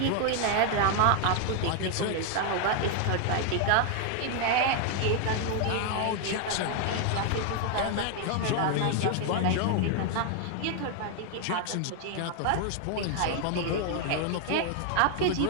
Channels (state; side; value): different; both; correlation 0.00